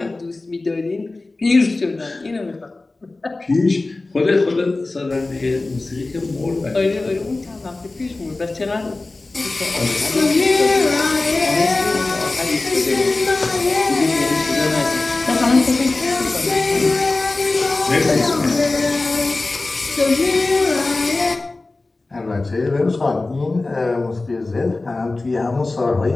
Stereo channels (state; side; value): quieter; right; 3.2 dB